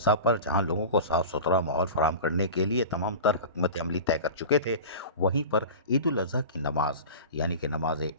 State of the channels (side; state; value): both; inverted; correlation -0.33